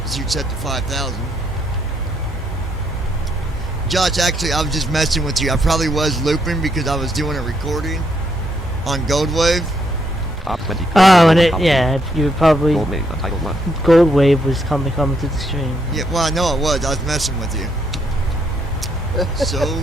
set to 5,000. Josh, actually, I was just messing with you. I probably was looping because I was doing a recording on Gold Wave. Top 20. Oh, and you were probably Gold Wave, Untitled 1. Gold Wave was coming to the stream. Yeah, well, I know it was. I was messing with you. So,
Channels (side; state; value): both; normal; correlation 0.75